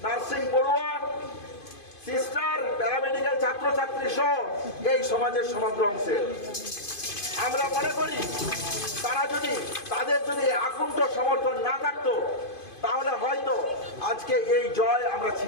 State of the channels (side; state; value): right; late; 2.5 ms